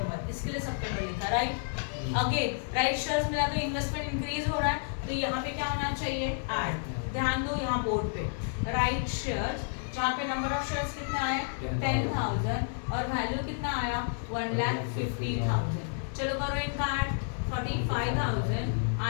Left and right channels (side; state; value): right; silent; digital silence